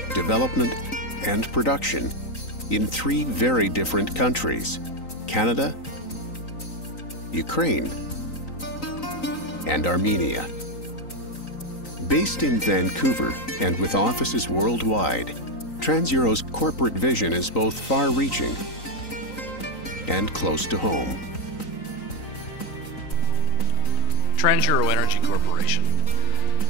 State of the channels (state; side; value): late; right; 3.9 ms